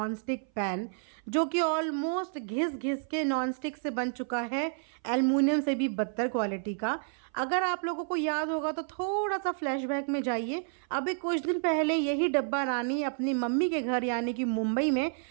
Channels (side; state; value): left; silent; 57 dB below the other